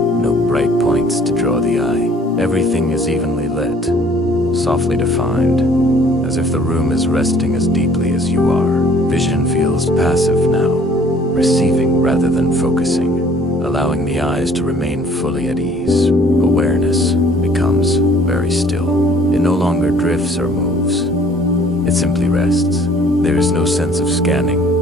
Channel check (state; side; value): normal; both; correlation 0.56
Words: bright points to draw the eye. Everything is evenly lit, softly defined, as if the room is resting as deeply as you are. Vision feels passive now, receiving rather than focusing, allowing the eyes to remain fully at ease. Awareness becomes very still. It no longer drifts or moves. It simply rests. There is no sense of scanning,